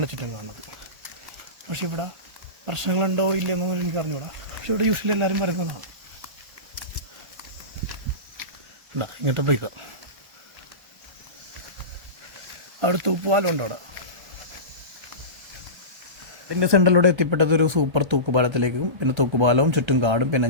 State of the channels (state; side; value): late; left; 1.4 ms